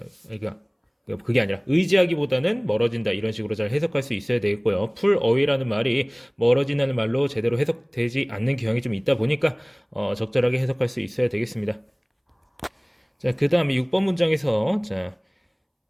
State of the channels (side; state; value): both; identical; correlation 1.00